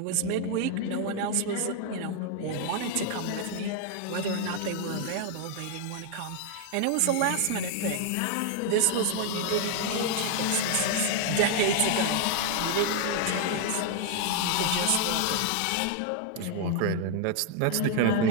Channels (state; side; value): different; both; correlation 0.00